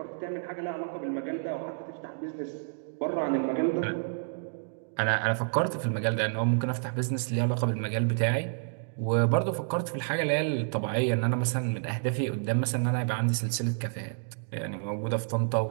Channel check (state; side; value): silent; left; digital silence